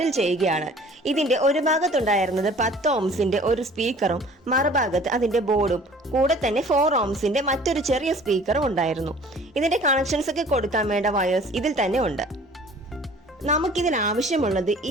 ചെയ്യുകയാണ്. ഇതിന്റെ ഒരു ഭാഗത്തുണ്ടായിരുന്നത് 10 ഓംസിന്റെ ഒരു സ്പീക്കറും മറുഭാഗത്ത് അതിന്റെ ബോർഡും കൂടെ തന്നെ 4 ഓംസിന്റെ മറ്റൊരു ചെറിയ സ്പീക്കറും ഉണ്ടായിരുന്നു. ഇതിന്റെ കണക്ഷൻസ് ഒക്കെ കൊടുക്കാൻ വേണ്ട വയേഴ്സ് ഇതിൽ തന്നെ ഉണ്ട്. നമുക്കിതിൽ ആവശ്യമുള്ളത്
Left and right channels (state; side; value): normal; both; correlation 0.50